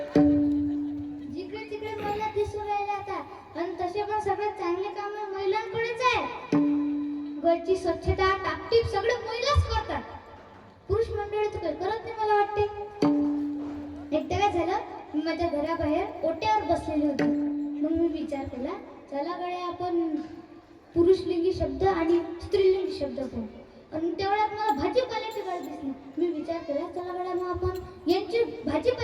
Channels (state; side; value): identical; both; correlation 1.00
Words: तिकडे महिला दिसून राहिल्या आता आणि तसे पण सगळ्यात चांगले काम महिलांकडेच आहे. घरची स्वच्छता टापटीप सगळे महिलाच करतात. पुरुष मंडळी तर काही करत नाही मला वाटते. एकदा काय झालं, मी माझ्या घराबाहेर ओट्यावर बसलेली होती. मग मी विचार केला, चला गड्या आपण पुरुषलिंगी शब्द आणि स्त्रीलिंगी शब्द पाहू. आणि तेवढ्यात मला भाजीपाल्याची गाडी दिसली. मी विचार केला, चला गड्या मग आपण यांची